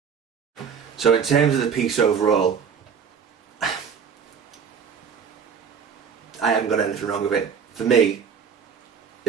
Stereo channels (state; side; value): quieter; left; 6.8 dB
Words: So in terms of the piece overall, I haven't got anything wrong with it. For me,